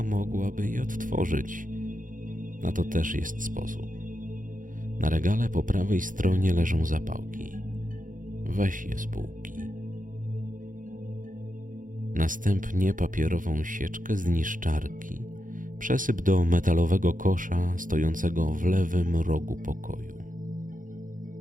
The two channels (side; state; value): left; late; 0.39 ms